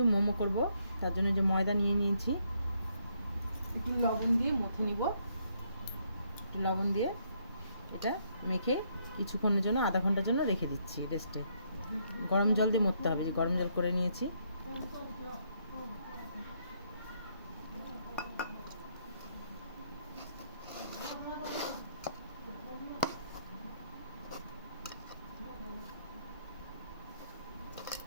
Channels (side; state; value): both; inverted; correlation -0.73